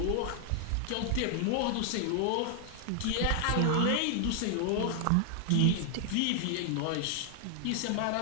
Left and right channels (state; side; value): different; both; correlation 0.00